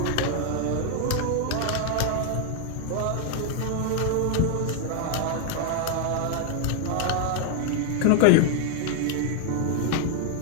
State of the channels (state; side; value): different; both; correlation 0.00